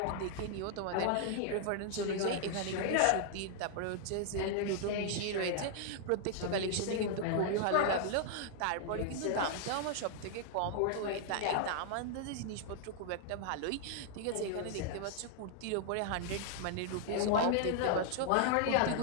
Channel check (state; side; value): different; both; correlation 0.00